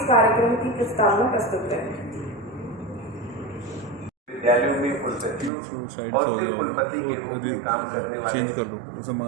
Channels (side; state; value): left; drops out; at 5.5 s